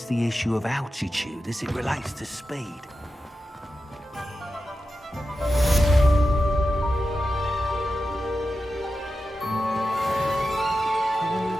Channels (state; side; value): normal; both; correlation 0.91